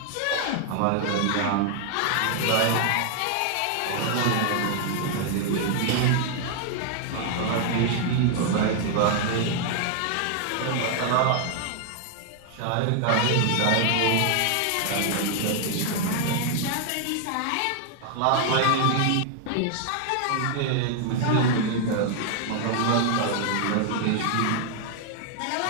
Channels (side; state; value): both; different; correlation 0.00